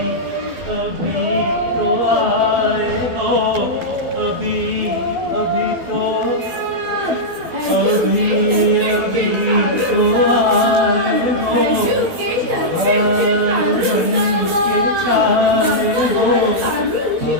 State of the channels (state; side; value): late; left; 12 ms